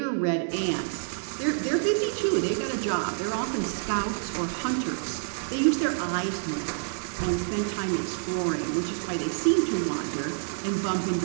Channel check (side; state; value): left; silent; digital silence